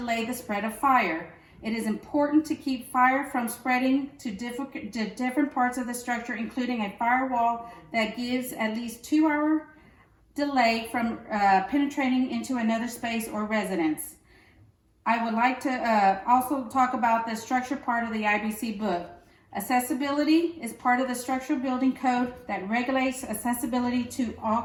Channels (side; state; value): both; identical; correlation 1.00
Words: the spread of fire. It is important to keep fire from spreading to different parts of the structure, including a firewall that gives at least 2-hour delay from penetrating into another space or residence. I would like to also talk about the structure part of the IBC book. Accessibility is part of the structural building code that regulates accessibility to all